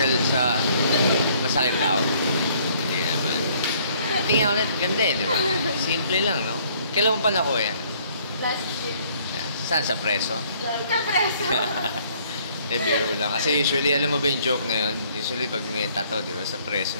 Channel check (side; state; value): both; inverted; correlation -0.62